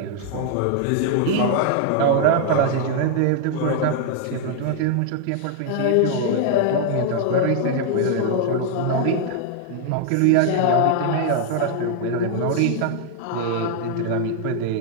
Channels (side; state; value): both; different; correlation 0.00